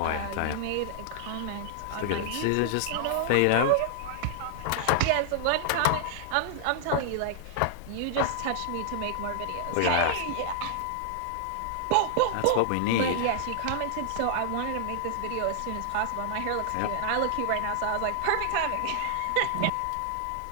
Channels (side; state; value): both; different; correlation -0.01